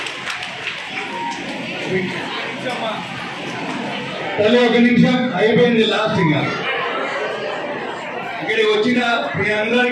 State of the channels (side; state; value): both; identical; correlation 1.00